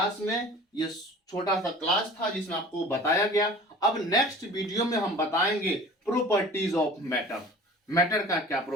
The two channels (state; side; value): normal; both; correlation 0.43